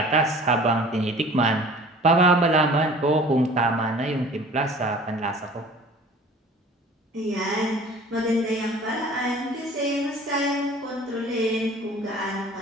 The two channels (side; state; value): both; normal; correlation 0.46